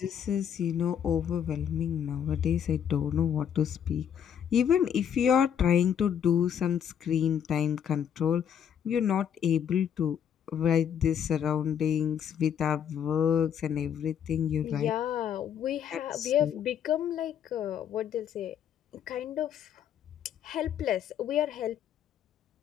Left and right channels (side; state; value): right; quieter; 8.7 dB